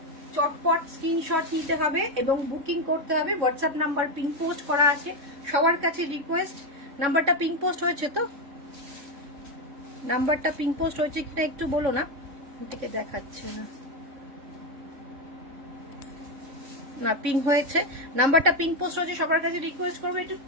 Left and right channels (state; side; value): late; left; 3.6 ms